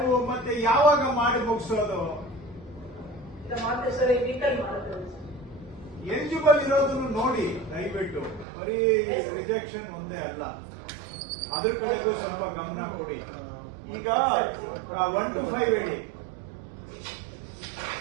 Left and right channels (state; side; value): drops out; left; at 8.5 s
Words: ಮತ್ತೆ ಯಾವಾಗ ಮಾಡಿ ಮುಗಿಸೋದು? ಎಲಿಜಿಬಲ್ ಇರೋದನ್ನು ನೋಡಿ ದಯವಿಟ್ಟು. ಬರೀ ರಿಜೆಕ್ಷನ್ ಒಂದೇ ಅಲ್ಲ, ಅದ್ರ ಕಡೆಗೂ ಸ್ವಲ್ಪ ಗಮನ ಕೊಡಿ. ಈಗ 1 to 5 ಹೇಳಿ.